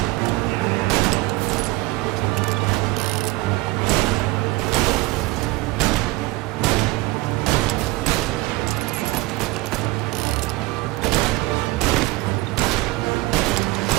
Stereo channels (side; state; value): left; quieter; 21.2 dB